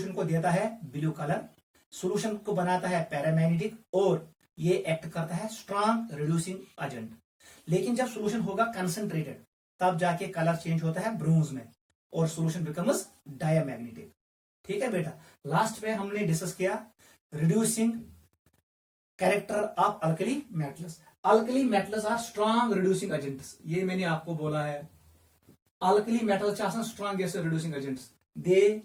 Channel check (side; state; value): both; identical; correlation 1.00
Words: को देता है ब्लू कलर, सॉल्यूशन को बनाता है पैरामैग्नेटिक और ये एक्ट करता है स्ट्रॉन्ग रिड्यूसिंग एजेंट। लेकिन जब सॉल्यूशन होगा कंसंट्रेटेड तब जाके कलर चेंज होता है ब्रोंज में और सॉल्यूशन बिकम्स डायमैग्नेटिक। ठीक है बेटा। लास्ट में हमने डिस्कस किया reducing character of alkali metals. Alkali metals are strong reducing agents. ये मैंने आपको बोला है alkali metals are strongest reducing agents, they